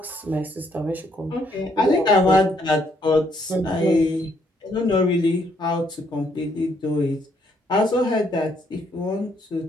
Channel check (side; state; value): both; normal; correlation 0.70